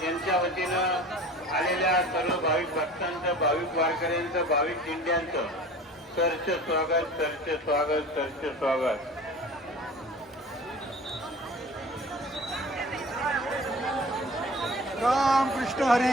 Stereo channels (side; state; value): both; normal; correlation 0.42